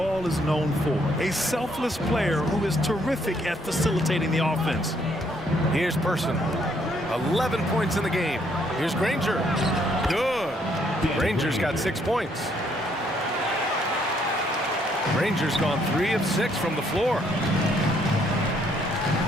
is known for. A selfless player who is terrific at facilitating the offense. Here's Person. 11 points in the game. Here's Granger. Good. Granger's got 6 points. Granger's gone 3 of 6 from the floor.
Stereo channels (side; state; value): both; normal; correlation 0.69